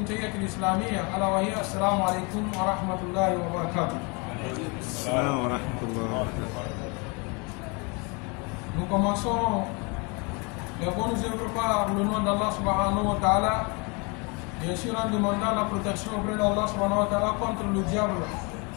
تحية الإسلامية ألا وهي السلام عليكم ورحمة الله وبركاته. السلام ورحمة الله وبركاته. Nous commençons les bonnes œuvres par le nom d'Allah subhanahu wa ta'ala, bien sûr en demandant la protection auprès d'Allah subhanahu wa ta'ala contre le diable,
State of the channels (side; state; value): right; quieter; 30.7 dB